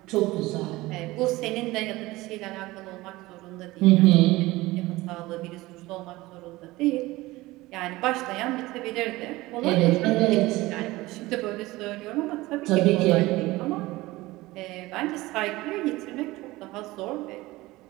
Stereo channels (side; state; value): left; quieter; 19.5 dB